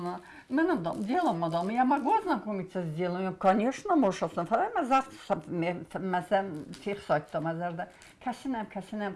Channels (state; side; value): identical; both; correlation 1.00